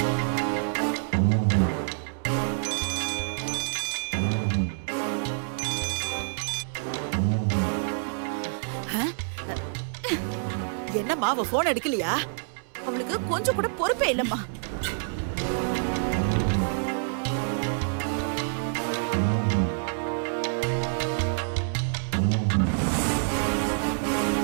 என்னம்மா, அவ போன் எடுக்கலையா? அவளுக்கு கொஞ்சம் கூட பொறுப்பே இல்லம்மா.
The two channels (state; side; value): silent; left; 60 dB below the other